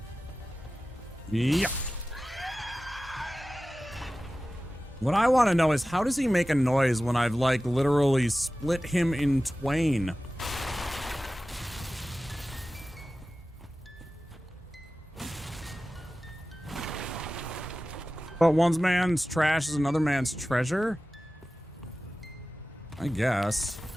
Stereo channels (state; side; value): normal; both; correlation 0.95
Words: Yeah. What I want to know is how does he make a noise when I've like literally split him in twain? But one man's trash is another man's treasure? I guess.